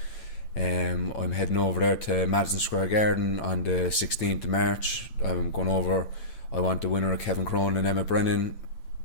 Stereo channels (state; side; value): late; right; 9.0 ms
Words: I'm heading over there to Madison Square Garden on the 16th of March. I'm going over. I want the winner of Kevin Cronin and Emmett Brennan,